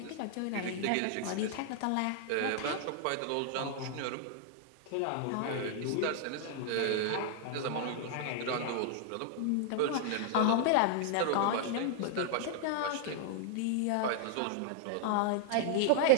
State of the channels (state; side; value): different; both; correlation -0.01